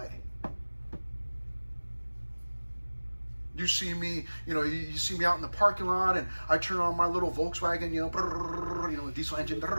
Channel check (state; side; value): inverted; both; correlation -1.00